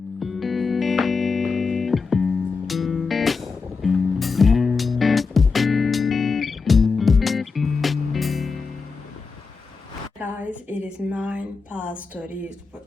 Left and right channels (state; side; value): quieter; right; 4.7 dB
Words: Guys, it is 9 past 30.